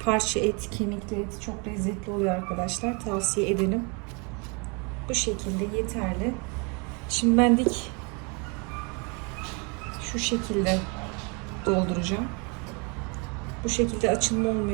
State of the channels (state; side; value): quieter; left; 32.4 dB